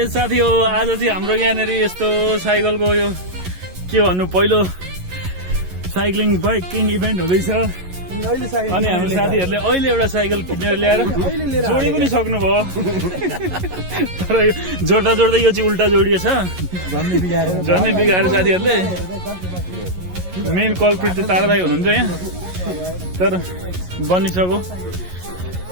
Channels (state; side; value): late; left; 11 ms